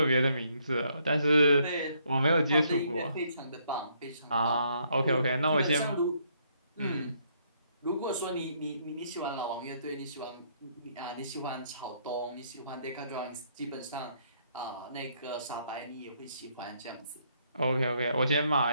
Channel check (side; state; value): both; inverted; correlation -0.70